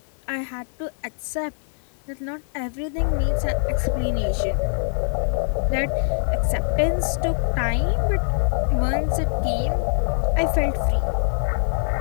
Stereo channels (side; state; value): right; silent; digital silence